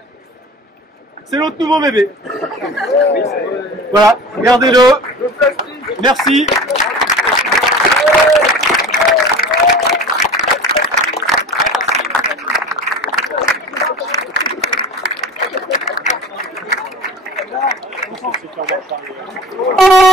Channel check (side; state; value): both; normal; correlation 0.38